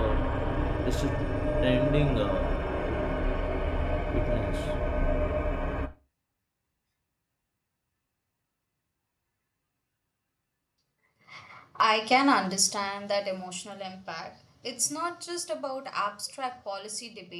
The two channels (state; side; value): identical; both; correlation 1.00